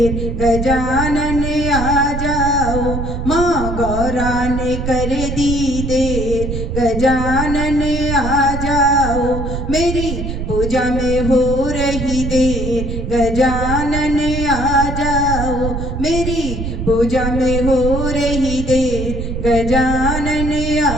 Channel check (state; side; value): noise; right; rumble, 4 dB below the sound